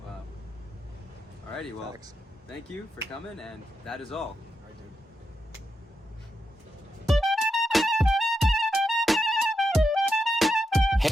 Wow. Alrighty, well, Facts. thank you for coming, and that is all.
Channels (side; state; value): both; normal; correlation 0.85